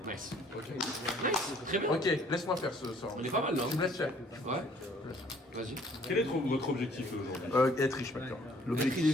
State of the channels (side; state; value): both; normal; correlation 0.59